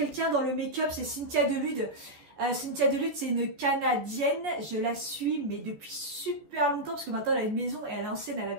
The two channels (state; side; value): late; left; 14 ms